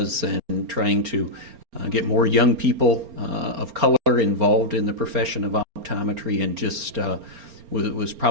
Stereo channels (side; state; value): left; late; 4.3 ms